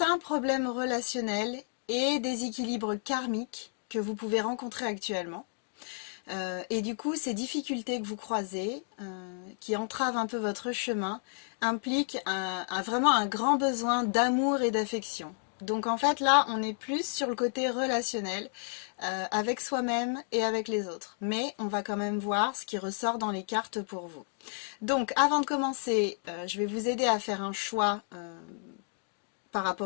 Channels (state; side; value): silent; right; 57 dB below the other